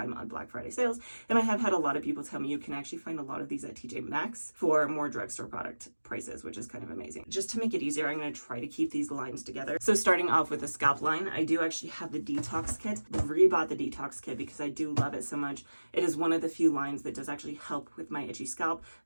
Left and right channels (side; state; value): both; inverted; correlation -1.00